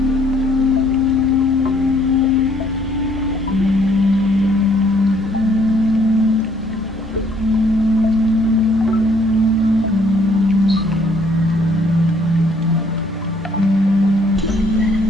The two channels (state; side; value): normal; both; correlation 0.64